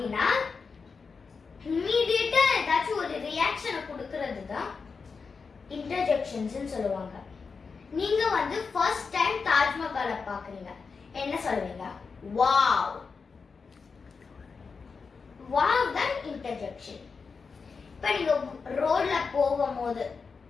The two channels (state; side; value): quieter; right; 5.0 dB